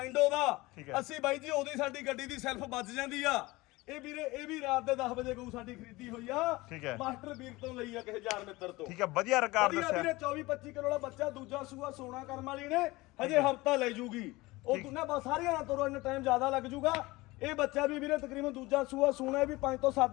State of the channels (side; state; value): right; quieter; 21.1 dB